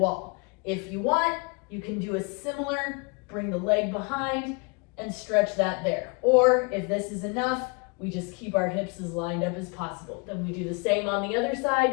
If you want, you can do a similar, bring the leg behind and stretch that there. Or if this is enough, we just keep our hips as lined up as possible. Then we do the same on the other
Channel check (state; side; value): quieter; right; 32.4 dB